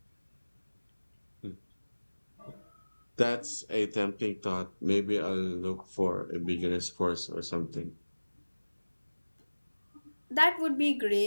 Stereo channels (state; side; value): inverted; both; correlation -1.00